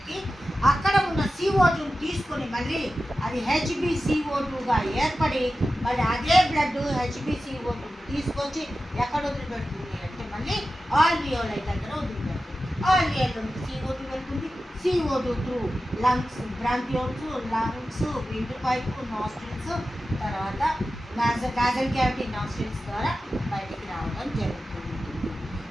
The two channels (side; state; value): both; normal; correlation 0.93